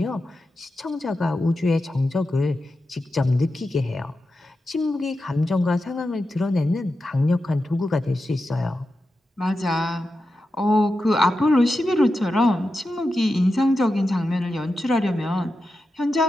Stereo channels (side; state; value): both; normal; correlation 0.90